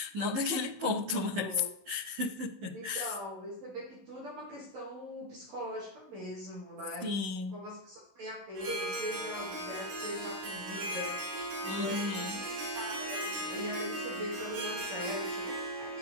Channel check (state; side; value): late; left; 16 ms